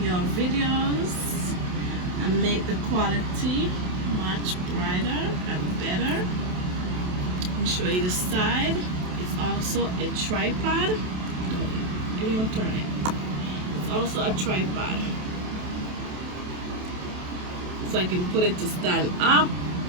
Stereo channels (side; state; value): left; late; 27 ms